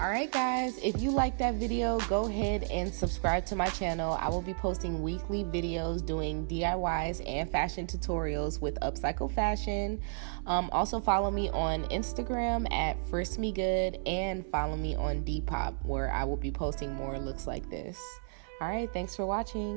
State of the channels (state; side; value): silent; left; 56 dB below the other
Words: guys, if you like that video, go ahead and subscribe to my channel. I will be posting weekly videos doing DIYs and fashion tutorials with upcycled fashion. Also follow me on Instagram at FristMeGood and follow me on Depop, where I will be posting more looks like this. Alright, thanks for